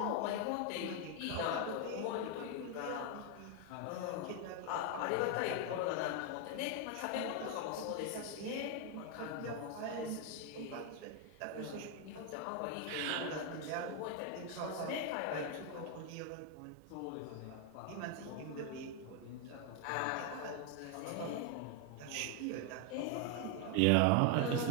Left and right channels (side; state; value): both; different; correlation 0.01